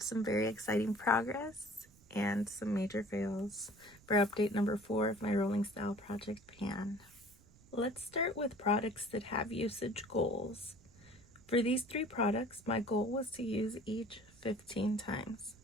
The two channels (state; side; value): noise; right; rumble, 25 dB below the sound